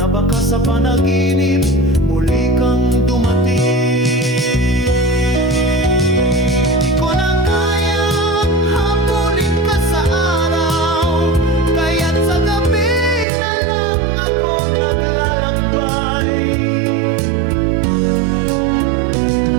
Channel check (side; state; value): left; drops out; at 13.2 s